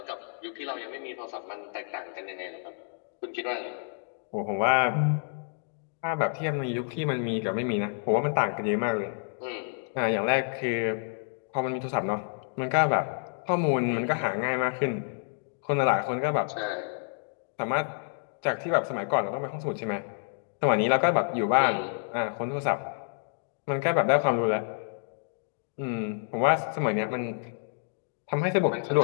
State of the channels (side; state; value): right; silent; digital silence